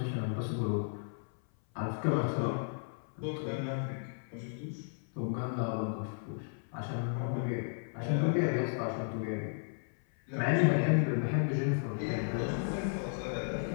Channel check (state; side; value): silent; right; 55 dB below the other